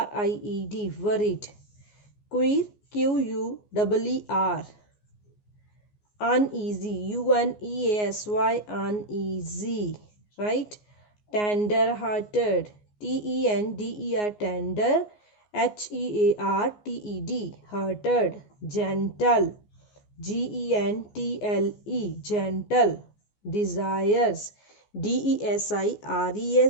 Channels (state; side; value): late; right; 14 ms